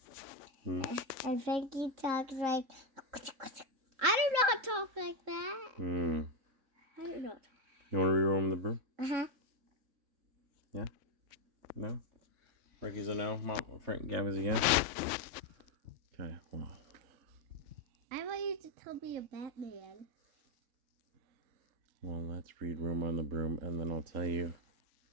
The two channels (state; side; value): late; left; 3.5 ms